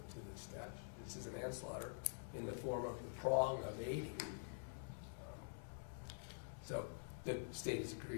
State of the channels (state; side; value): silent; right; digital silence